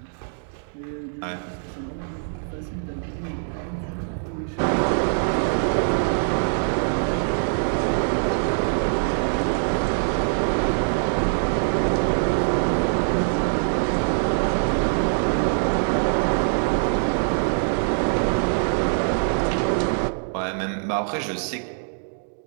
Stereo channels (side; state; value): left; silent; digital silence